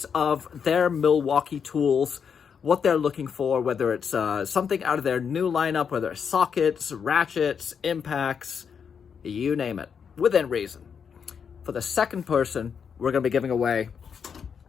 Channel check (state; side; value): quieter; right; 6.8 dB